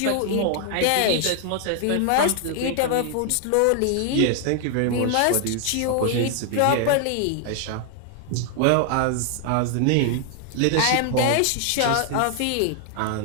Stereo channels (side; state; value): both; different; correlation 0.00